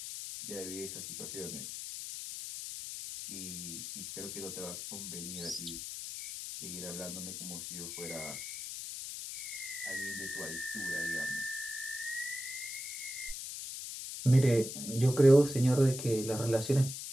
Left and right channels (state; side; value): noise; left; hiss, 7 dB below the sound